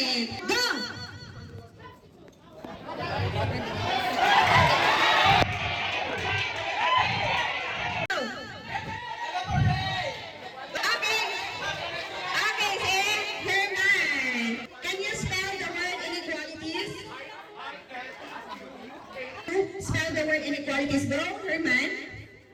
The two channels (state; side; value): identical; both; correlation 1.00